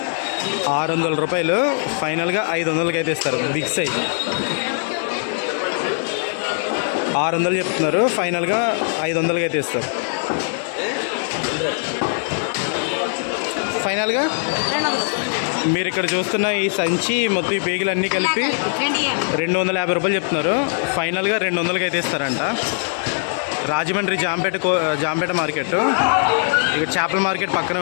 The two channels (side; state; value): right; silent; digital silence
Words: 600 రూపాయలు. ఫైనల్గా 500కి అయితే ఇస్తారు. బిగ్ సైజ్ 600 చెప్తున్నారు. ఫైనల్గా 500కి అయితే ఇస్తారు. ఫైనల్గా మీరు ఇక్కడ చూస్తున్న ఈ సంచి మొత్తం ఈ పేగులు అన్నీ కలిపి 250 రూపాయలు చెప్తున్నారు. ఫైనల్గా 200కి అయితే ఇస్తారంట. రాజమండ్రి జాంపేట మార్కెట్. ఇక్కడ చేపల మార్కెట్ పక్కనే